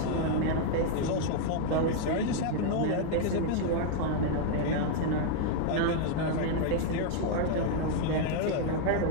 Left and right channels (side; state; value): both; different; correlation 0.00